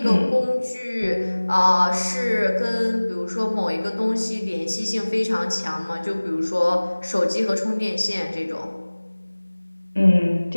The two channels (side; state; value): both; inverted; correlation -1.00